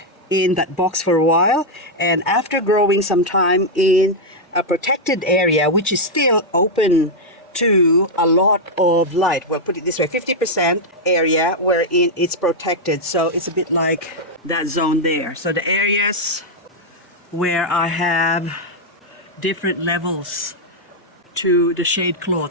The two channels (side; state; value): both; normal; correlation -0.02